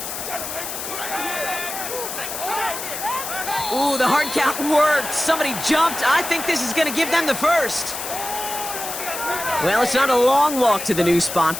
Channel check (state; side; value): noise; left; hiss, 6 dB below the sound